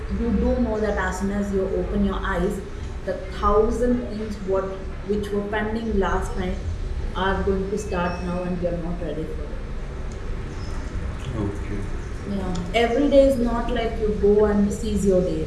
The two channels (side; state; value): both; identical; correlation 1.00